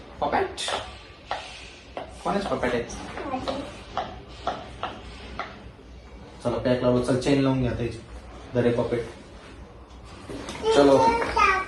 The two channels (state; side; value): identical; both; correlation 1.00